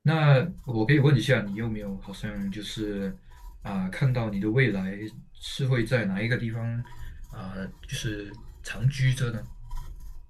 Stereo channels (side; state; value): both; identical; correlation 1.00